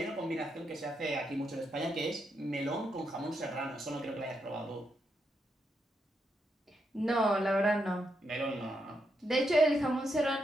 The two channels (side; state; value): both; normal; correlation 0.81